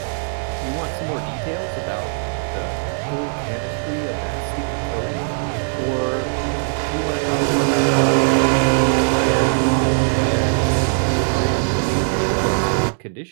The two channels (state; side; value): silent; left; 58 dB below the other